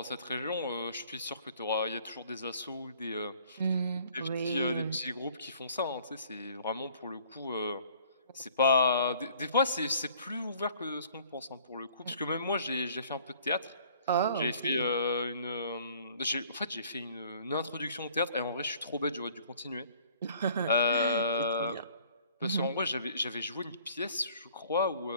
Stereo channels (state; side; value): inverted; both; correlation -0.55